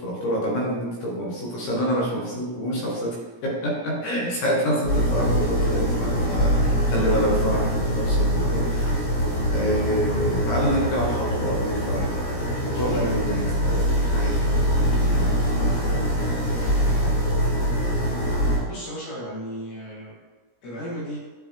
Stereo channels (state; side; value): late; right; 17 ms